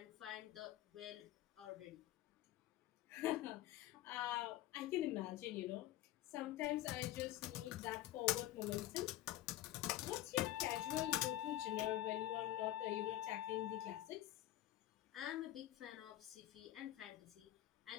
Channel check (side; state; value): right; quieter; 14.3 dB